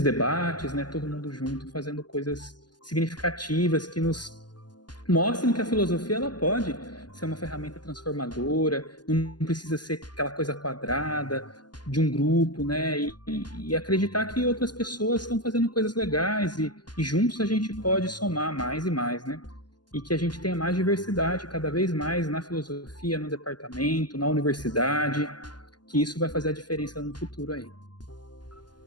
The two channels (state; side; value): late; right; 0.70 ms